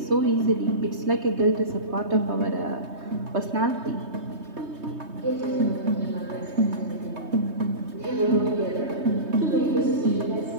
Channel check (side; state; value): left; late; 3.2 ms